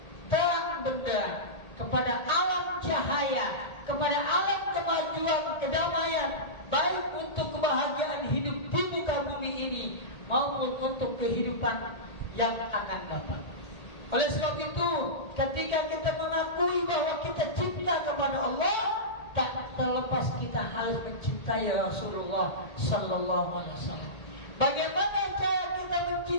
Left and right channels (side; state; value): right; late; 1.8 ms